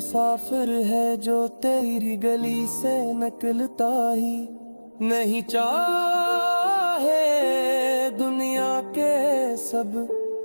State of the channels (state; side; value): inverted; both; correlation -1.00